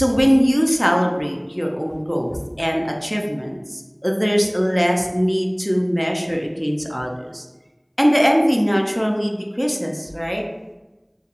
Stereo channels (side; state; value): both; identical; correlation 1.00